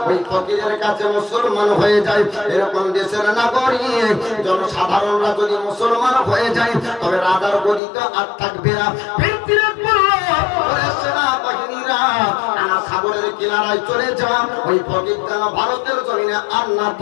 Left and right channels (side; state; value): right; drops out; at 7.8 s